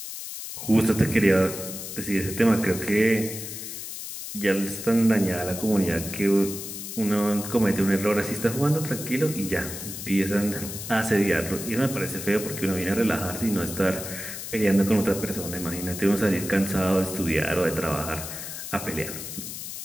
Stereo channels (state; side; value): noise; left; hiss, 8 dB below the sound